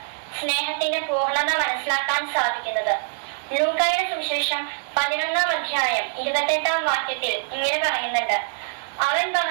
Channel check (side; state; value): left; silent; digital silence